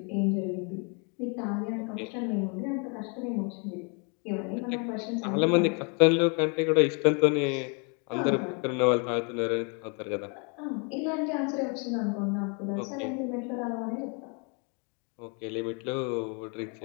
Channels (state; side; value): quieter; right; 35.9 dB